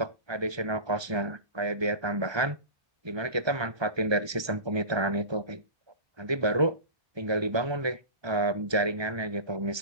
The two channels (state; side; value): late; left; 1.3 ms